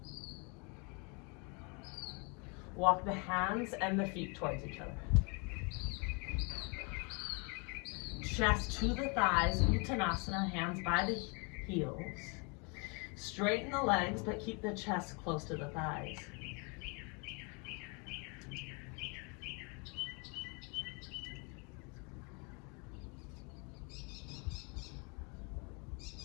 Walk the hands and the feet towards each other. Chest to the thighs, Uttanasana, hands by the heels. Straighten the legs, but keep the chest close to the thighs.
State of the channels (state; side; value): quieter; right; 33.0 dB